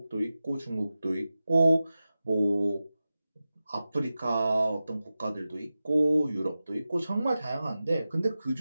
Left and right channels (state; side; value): inverted; both; correlation -0.94